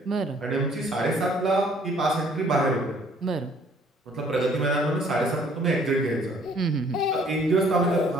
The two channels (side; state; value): both; normal; correlation 0.59